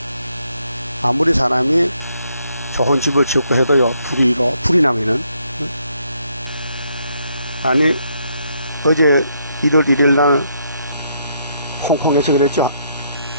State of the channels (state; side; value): inverted; both; correlation -0.73